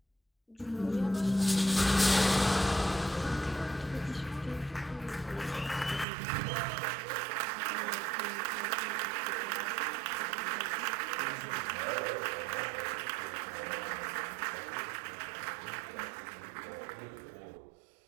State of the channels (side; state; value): left; drops out; at 6.1 s